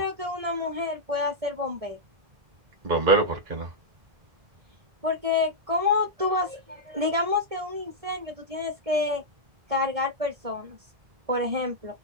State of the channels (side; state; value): left; late; 1.7 ms